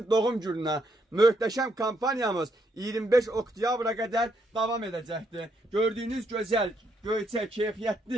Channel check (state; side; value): normal; both; correlation 0.75